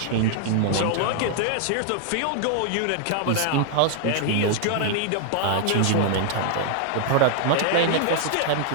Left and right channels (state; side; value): different; both; correlation 0.00